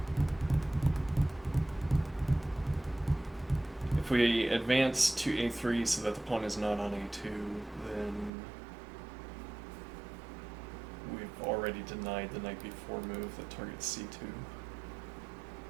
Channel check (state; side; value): drops out; left; at 8.3 s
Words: if we advance to a3 so that the pawn is not on a2, then we've already denied the knight b4 move that targets c2.